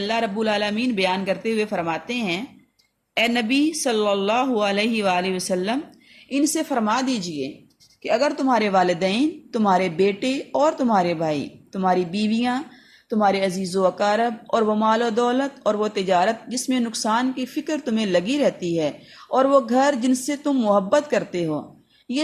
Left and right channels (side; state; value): both; identical; correlation 1.00